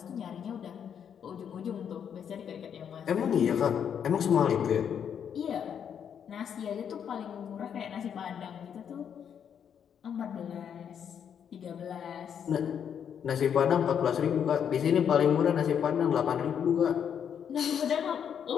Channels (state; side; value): quieter; right; 8.2 dB